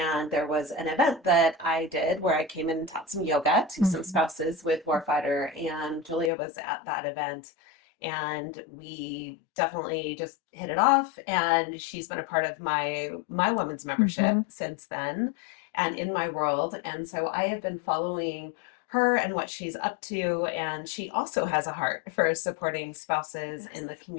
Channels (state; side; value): drops out; right; at 6.3 s